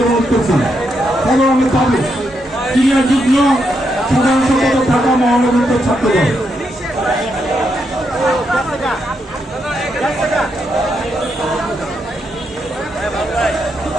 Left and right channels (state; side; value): normal; both; correlation 0.81